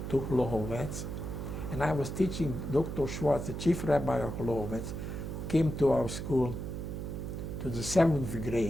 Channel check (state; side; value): noise; right; hum, 5 dB below the sound